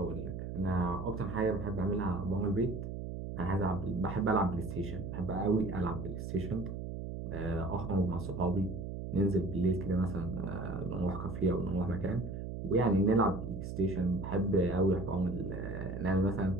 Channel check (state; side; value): noise; right; hum, 6 dB below the sound